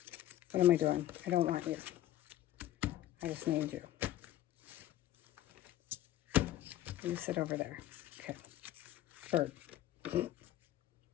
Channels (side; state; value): right; quieter; 13.5 dB